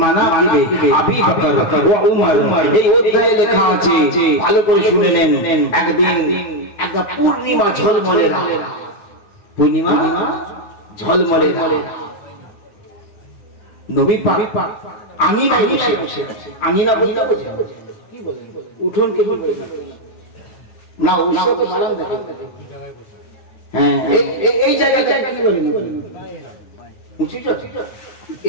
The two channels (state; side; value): late; right; 9.7 ms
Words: আবি বকর ওয়া উমর এই অধ্যায়ে লেখা আছে ভালো করে শুনে নেন একদিন একটা পূর্ণিমা ঝলমলে রাত পূর্ণিমা ঝলমলে রাত নবী পাক আঙিনায় বসে আঙিনা বলতে কি বলেন উঠোন কে কি বলেন না ওইসব তো মারাম দেখে হ্যাঁ এই জায়গাটা কি বলেন উঁচু